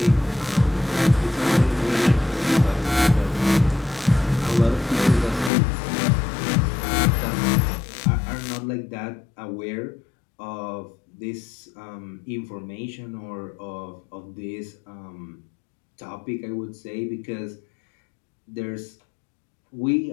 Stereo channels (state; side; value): drops out; right; at 5.5 s